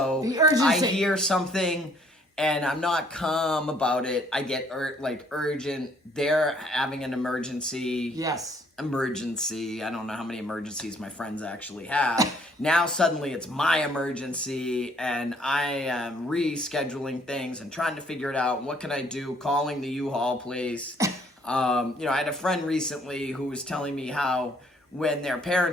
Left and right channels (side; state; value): both; normal; correlation 0.63